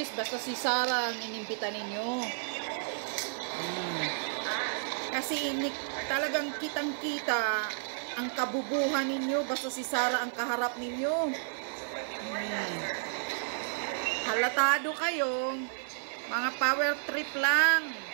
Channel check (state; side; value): silent; left; 57 dB below the other